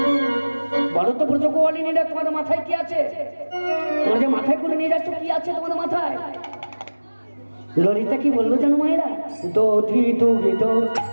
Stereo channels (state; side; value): inverted; both; correlation -1.00